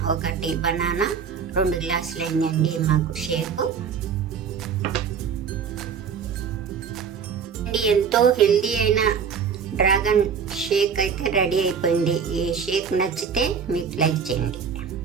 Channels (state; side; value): quieter; left; 6.6 dB